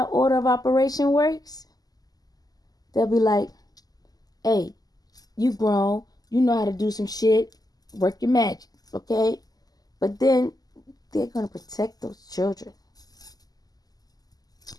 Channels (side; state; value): right; late; 0.18 ms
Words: order of operation works? They'll be like, hey, you grown, you know how to do some shit, work your magic, okay? But then they're going to protect those children.